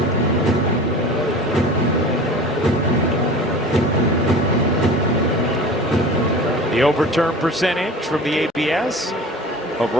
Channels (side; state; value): both; normal; correlation 0.38